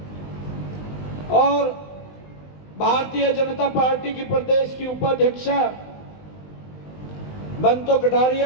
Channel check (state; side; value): late; right; 20 ms